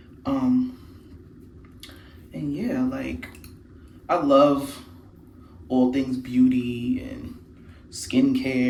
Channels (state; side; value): identical; both; correlation 1.00